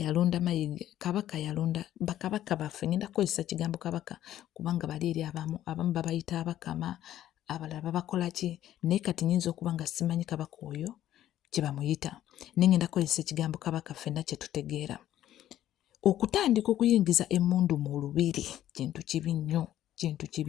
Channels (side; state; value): right; quieter; 12.4 dB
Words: Mayiga, kabaka yalonda bakabaka baffe. Ngenda kukozesa kigambo kabaka kubanga bali eri abamu babayita abakama, abalala babakola ki, naye kati nyinza okuba nga simanyi kabaka oyo kye bamuyita. Naye ngenda kukozesa ekigambo kabaka ffenna kye tutegeera. Okutandika okuyingiza emmundu mu lubiri kintu kibi nnyo, kintu